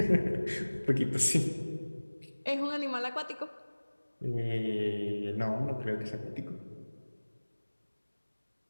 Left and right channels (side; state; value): both; inverted; correlation -1.00